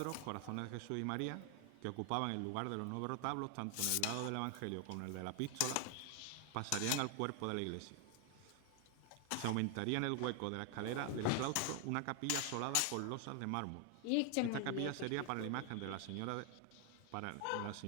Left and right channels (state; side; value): different; both; correlation 0.00